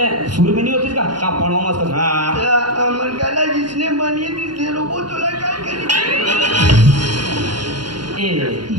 सुर में नहीं होती इसका का पढ़वा मस्त अमर गला जिसने बनी थी से रोबो तो लगा करी ए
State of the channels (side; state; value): left; late; 0.71 ms